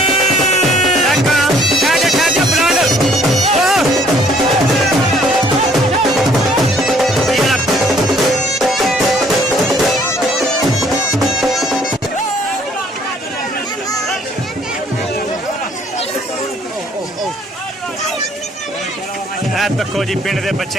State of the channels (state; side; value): normal; both; correlation 0.61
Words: देखो जी पिंड के